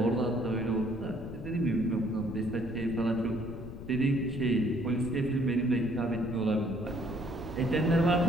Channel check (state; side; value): noise; left; rumble, 12 dB below the sound